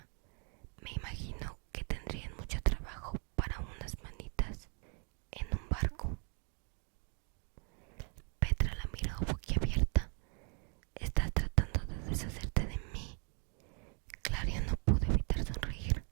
Me imagino que tendrían mucho trabajo para unas manitas en un barco. Petra la miró boquiabierta. ¿Estás tratando de deshacerte de mí? Clario no pudo evitar sonreír,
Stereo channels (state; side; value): quieter; left; 37.9 dB